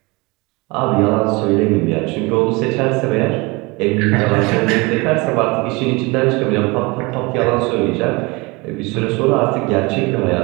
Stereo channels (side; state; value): left; quieter; 25.6 dB